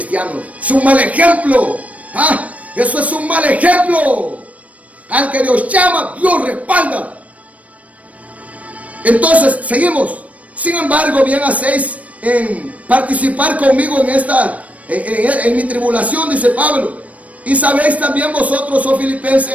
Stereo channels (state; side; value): late; left; 0.067 ms